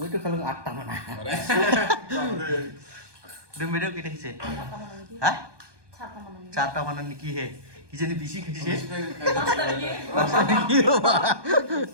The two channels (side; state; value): left; late; 1.2 ms